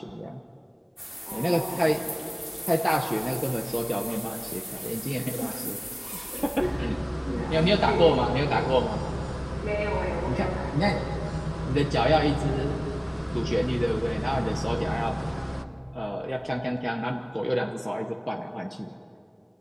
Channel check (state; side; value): identical; both; correlation 1.00